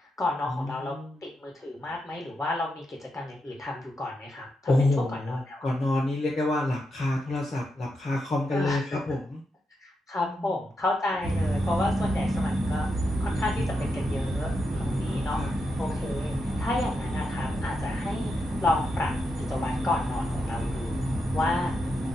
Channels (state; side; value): normal; both; correlation 0.84